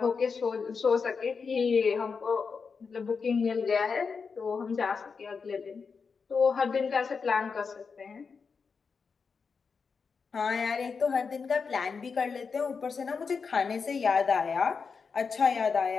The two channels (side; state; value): right; quieter; 5.4 dB